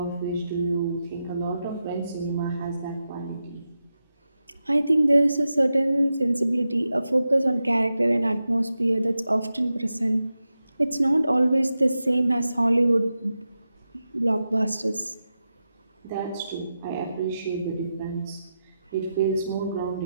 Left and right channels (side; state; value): both; inverted; correlation -0.90